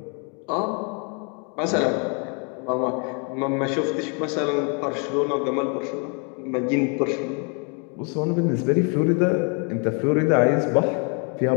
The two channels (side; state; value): right; quieter; 37.0 dB